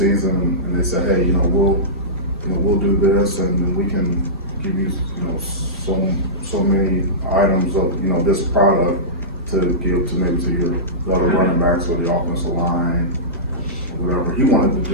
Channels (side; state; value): both; normal; correlation -0.18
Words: and they said, hey, we'll do this, and then we can give you, so many items of, this product to give to maybe to your other running backs or the offensive line, or whatever. He wanted to